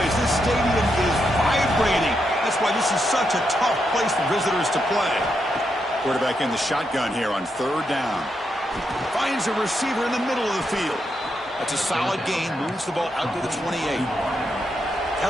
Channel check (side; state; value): both; normal; correlation 0.82